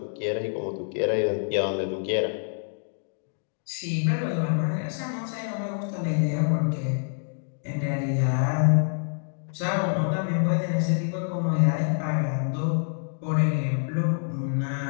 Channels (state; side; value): silent; right; digital silence